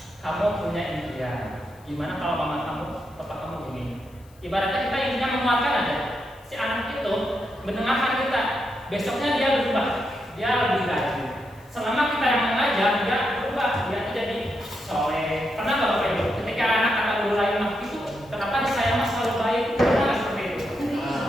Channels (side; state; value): left; noise; hiss, 30 dB below the sound